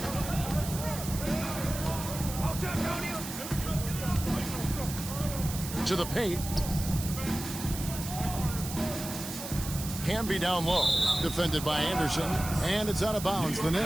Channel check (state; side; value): noise; right; hiss, 9 dB below the sound